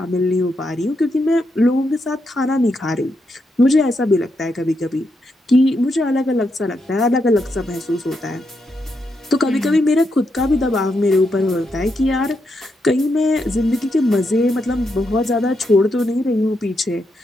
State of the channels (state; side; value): normal; both; correlation 0.82